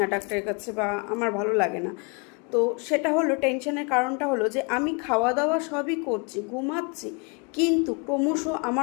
ডাক্তারের কাছে, বা আমার ভালো লাগে না। তো সেটা হলো, টেনশনের কারণটা হলো যে আমি খাওয়া দাওয়া সবই করছি, ঘুমাচ্ছি, কিন্তু ক্রমশ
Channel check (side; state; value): right; quieter; 31.9 dB